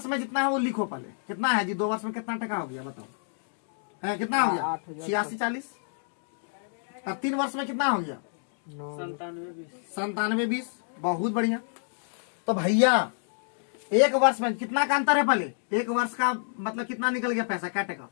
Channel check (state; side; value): silent; right; digital silence